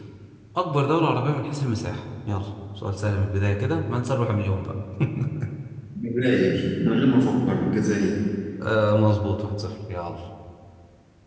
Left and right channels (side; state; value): both; identical; correlation 1.00